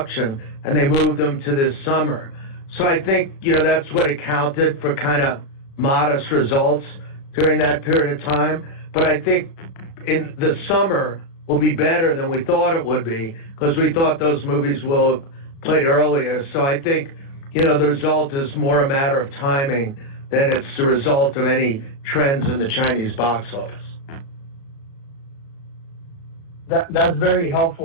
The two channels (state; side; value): late; right; 36 ms